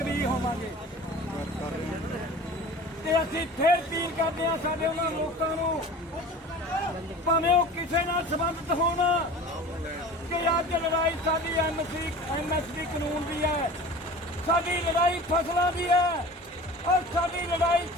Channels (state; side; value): normal; both; correlation 0.39